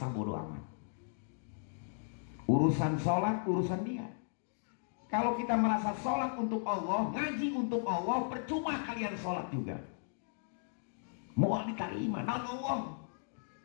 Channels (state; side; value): silent; right; digital silence